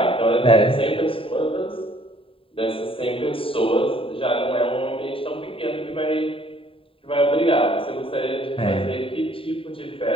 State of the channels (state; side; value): late; right; 0.26 ms